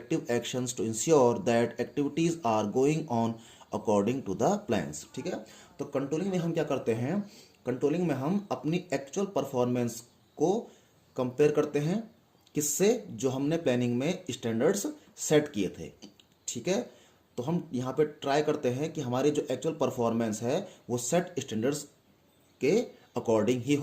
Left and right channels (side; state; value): both; identical; correlation 1.00